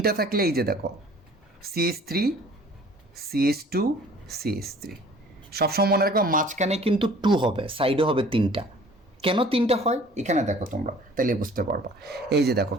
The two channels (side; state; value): both; normal; correlation 0.51